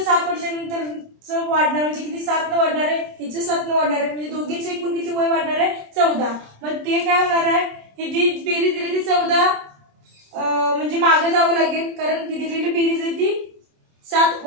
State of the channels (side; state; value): left; late; 27 ms